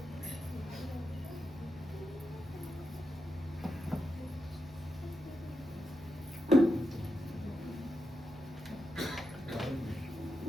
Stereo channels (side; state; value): right; noise; hum, 19 dB below the sound